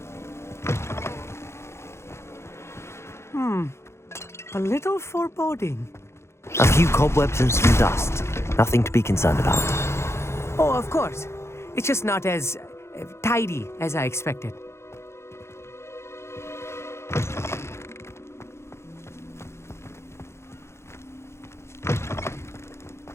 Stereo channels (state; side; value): late; right; 0.13 ms